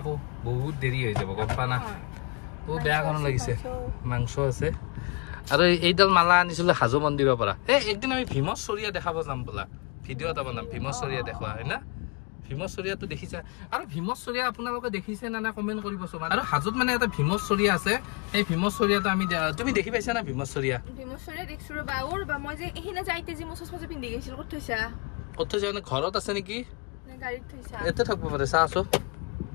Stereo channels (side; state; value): right; quieter; 31.7 dB